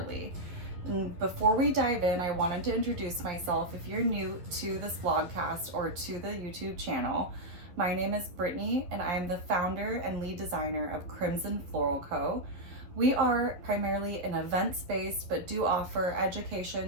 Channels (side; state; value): left; late; 11 ms